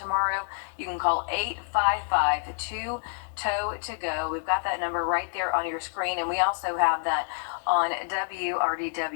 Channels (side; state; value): right; silent; digital silence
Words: You can call 855-2-TOW-TO-GO. We've got that number right there on your screen, and we also have that on